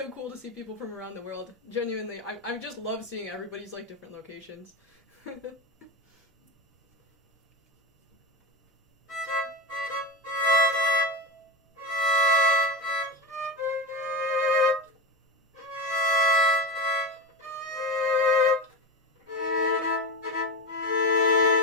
cool to see people from around the world. Genuinely, I just love seeing everybody's, like, different locations.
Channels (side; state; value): both; normal; correlation 0.19